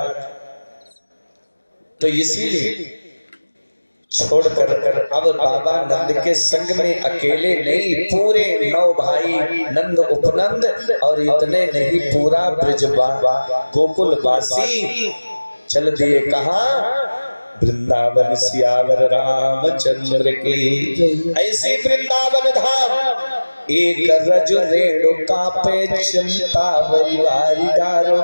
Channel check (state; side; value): inverted; both; correlation -1.00